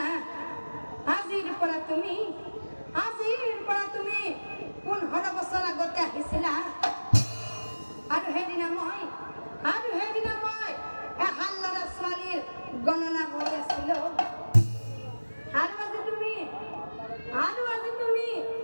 আজিৰ পৰা তুমি 15 বছৰ আগতে আহিছিলা আৰু সেইদিনা মই এহাল ল'ৰা ছোৱালীৰ গণনা কৰি আছিলো আৰু আজি তুমি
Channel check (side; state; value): both; inverted; correlation -1.00